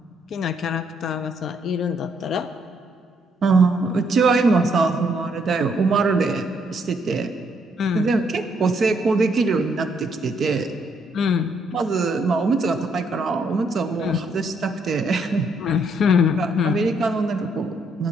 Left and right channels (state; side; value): normal; both; correlation 0.72